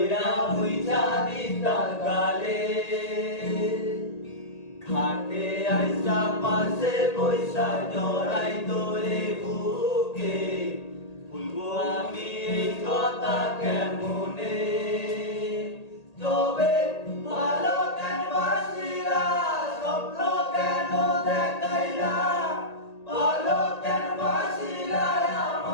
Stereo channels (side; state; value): right; late; 1.8 ms